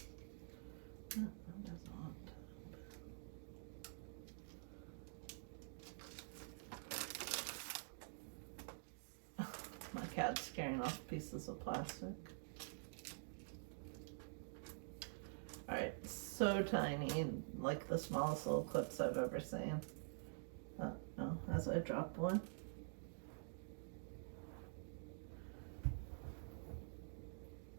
No, it doesn't want to open. My cat's scaring off pieces of plastic. Alright, so tiny, like the smallest little clips I've ever seen. No, as I drop one.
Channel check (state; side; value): silent; left; digital silence